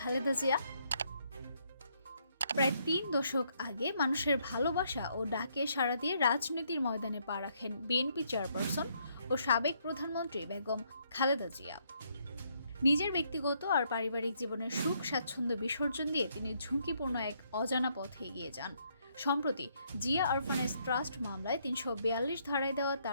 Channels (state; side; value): inverted; both; correlation -0.72